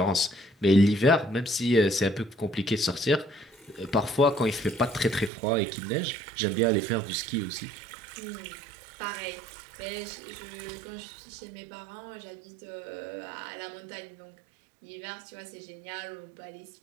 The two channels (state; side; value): drops out; left; at 5.3 s